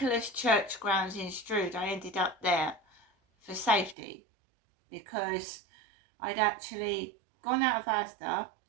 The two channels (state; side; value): drops out; left; at 4.0 s